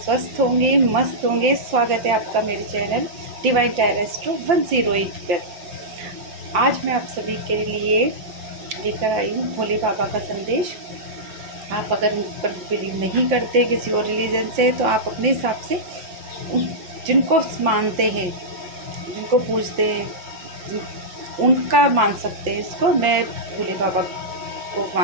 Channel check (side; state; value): left; late; 5.8 ms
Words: होंगे, मस्त होंगे। स्वागत है आपका मेरे चैनल डिवाइन टेरेस्ट्रो 108 पर। आज मैं आप सभी के लिए लेकर आई हूँ भोले बाबा का संदेश। आप अगर उन पर बिलीव नहीं करते किसी और रिलीजन से, तो आप अपने हिसाब से जिनको मानते हैं, जिनको पूजते हैं, उनका मान सकते हैं। इसको मैं भोले बाबा को